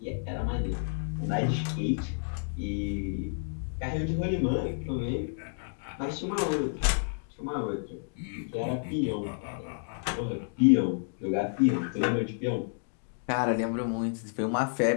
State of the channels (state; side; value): silent; right; digital silence